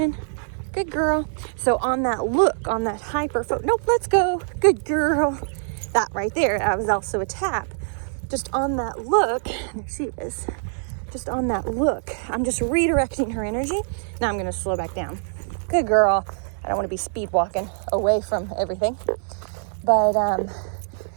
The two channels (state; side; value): silent; left; digital silence